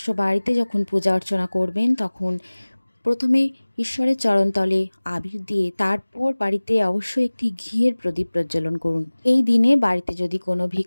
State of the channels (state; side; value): inverted; both; correlation -1.00